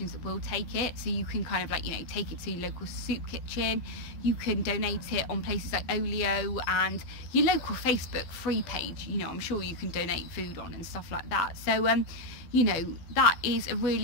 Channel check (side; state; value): right; late; 12 ms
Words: that will take it. So you can kind of, like, you know, take it to your local soup kitchen, you can donate it on places like Olio and your local Facebook free page, you know, I'm sure you can donate food on and stuff like that. So you know, that is a